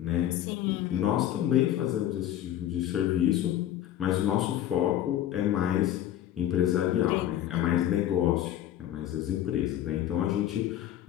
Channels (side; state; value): right; quieter; 12.1 dB